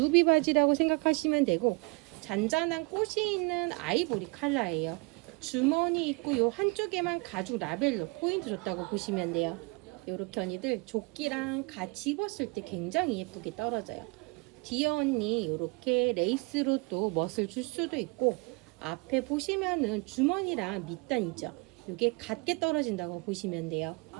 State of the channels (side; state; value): left; quieter; 28.9 dB